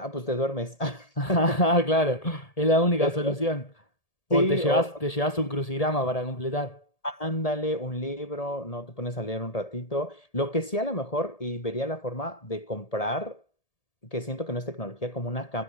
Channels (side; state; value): right; late; 1.8 ms